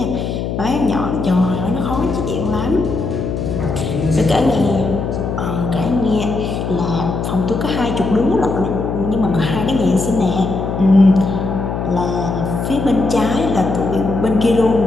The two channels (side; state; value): left; noise; hum, 3 dB below the sound